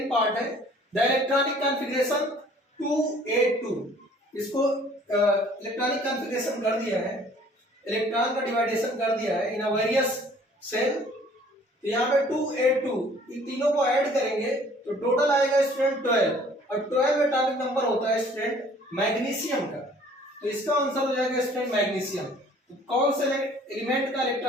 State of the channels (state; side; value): normal; both; correlation 0.55